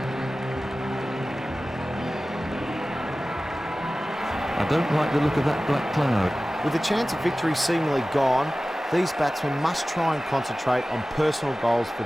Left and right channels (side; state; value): both; normal; correlation 0.96